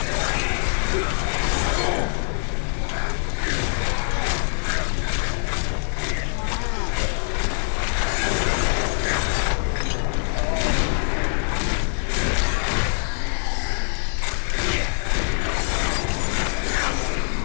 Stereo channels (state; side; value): silent; right; digital silence